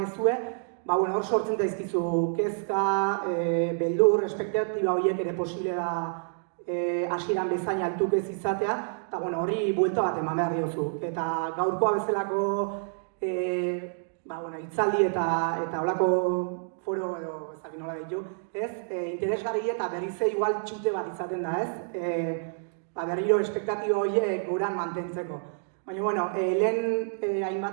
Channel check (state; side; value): silent; left; digital silence